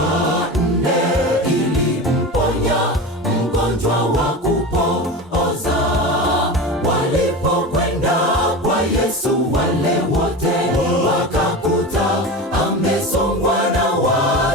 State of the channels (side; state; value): both; normal; correlation 0.27